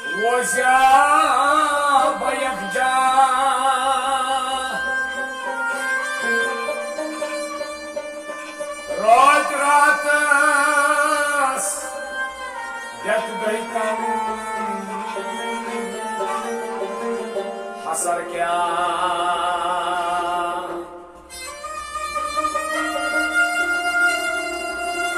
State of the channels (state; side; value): identical; both; correlation 1.00